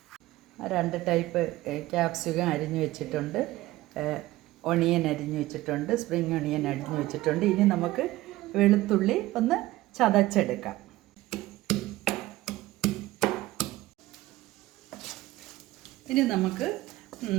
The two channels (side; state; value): left; quieter; 17.3 dB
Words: 2 ടൈപ്പ് ക്യാപ്സിക്കം അരിഞ്ഞു വെച്ചിട്ടുണ്ട്, ഒണിയൻ അരിഞ്ഞു വെച്ചിട്ടുണ്ട്, സ്പ്രിംഗ് ഒണിയൻ അരിഞ്ഞു വെച്ചിട്ടുണ്ട്. ഇനി നമുക്ക് വെളുത്തുള്ളി ഒന്ന് ചതച്ചെടുക്കാം. ഇനി നമുക്ക്